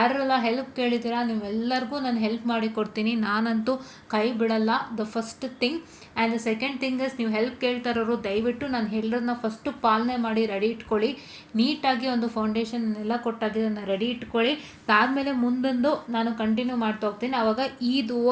ಹೆಲ್ಪ್ ಕೇಳಿದ್ದೀರಾ ನೀವೆಲ್ಲರಿಗೂ ನಾನು ಹೆಲ್ಪ್ ಮಾಡಿ ಕೊಡ್ತೀನಿ. ನಾನಂತೂ ಕೈ ಬಿಡಲ್ಲ. The first thing and the second thing is, ನೀವು ಹೆಲ್ಪ್ ಕೇಳ್ತಾರೋರು ದಯವಿಟ್ಟು ನಾನು ಹೇಳೋದನ್ನ ಫಸ್ಟು ಪಾಲನೆ ಮಾಡಿ ರೆಡಿ ಇಟ್ಕೊಳ್ಳಿ. ನೀಟಾಗಿ ಒಂದು ಫೌಂಡೇಶನ್ ಎಲ್ಲ ಕೊಟ್ಟಾಗಿದ್ದನ್ನು ರೆಡಿ ಇಟ್ಕೊಳ್ಳಿ. ಅದಾದಮೇಲೆ ಮುಂದೊಂದು ನಾನು ಕಂಟಿನ್ಯೂ ಮಾಡ್ತಾ ಹೋಗ್ತೀನಿ. ಆವಾಗ ಇದು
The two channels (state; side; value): identical; both; correlation 1.00